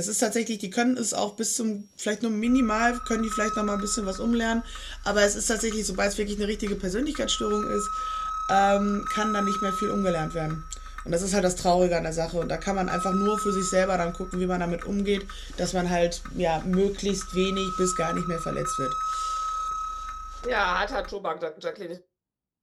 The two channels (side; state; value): both; identical; correlation 1.00